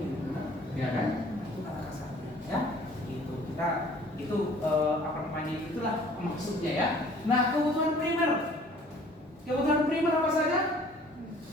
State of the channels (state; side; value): normal; both; correlation 0.53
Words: Ya kan? Itu kata kasarnya. Ya, itu apa namanya? Itulah maksudnya ya. Nah, kebutuhan primer. Kebutuhan primer apa saja?